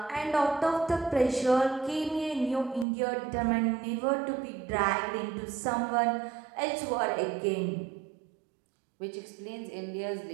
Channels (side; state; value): left; drops out; at 2.9 s